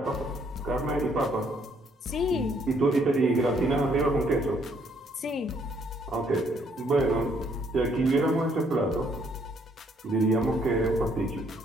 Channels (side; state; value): both; normal; correlation 0.68